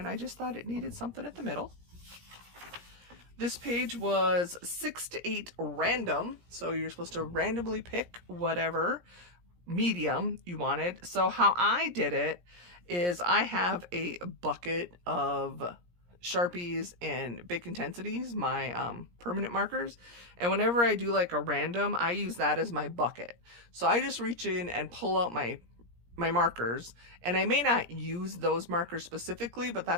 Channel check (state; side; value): late; left; 17 ms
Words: I just thought it needed something at the middle. This page was 6 to 8 random, so you're supposed to randomly pick whatever medium you wanted. So how I did it is I have a bucket of Sharpies and Bic Intensities, my permanent markers, and whenever I do like a random, I use that as my bucket. So I just reach in and pull out my markers, and I may not use those markers specifically, but